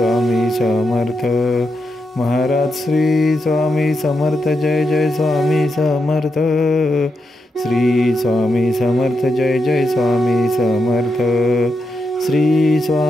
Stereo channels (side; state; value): both; normal; correlation 0.85